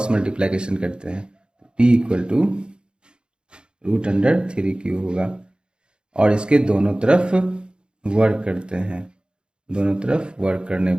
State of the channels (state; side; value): late; left; 0.051 ms